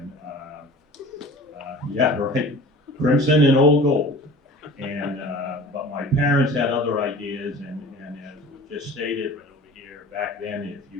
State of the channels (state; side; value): normal; both; correlation 0.42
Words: yeah, right, crimson and old gold. And but my parents had other ideas, and as was just stated right over here, back then, if